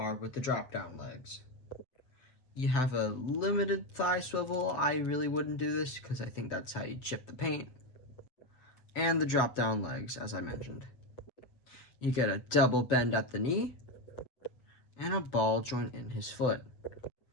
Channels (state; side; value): late; right; 7.8 ms